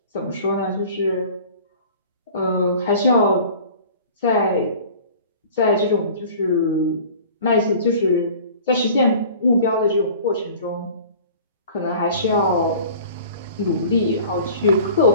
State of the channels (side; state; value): both; inverted; correlation -0.44